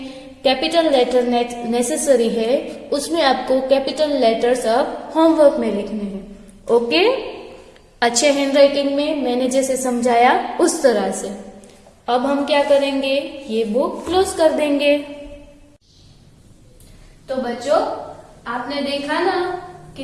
कैपिटल लेटर नेसेसरी है उसमें आपको कैपिटल लेटर्स अब होमवर्क में लिखने हैं। ओके, अच्छे हैंडराइटिंग में मैंने जैसे समझाया उस तरह से। अब हम क्या करेंगे? ये बुक क्लोज कर देंगे। तो बच्चों आपने देखा ना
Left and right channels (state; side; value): identical; both; correlation 1.00